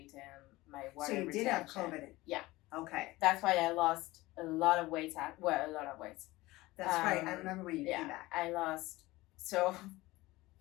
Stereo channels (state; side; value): quieter; right; 19.5 dB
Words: and my water So you retention. did have COVID. Yeah. Okay. That's why I lost a lot of weight. A lot of weight. That's right. I remember when you came back. I lost. So,